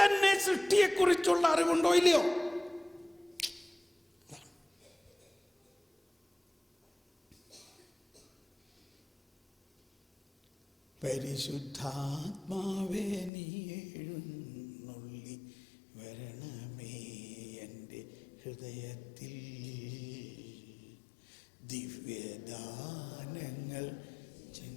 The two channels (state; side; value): drops out; right; at 13.3 s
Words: സൃഷ്ടിയെക്കുറിച്ചുള്ള അറിവുണ്ടോ ഇല്ലയോ? പരിശുദ്ധാത്മാവേ നീ എഴുന്നള്ളി വരണമേ എൻ്റെ ഹൃദയത്തിൽ, ദിവ്യദാനങ്ങൾ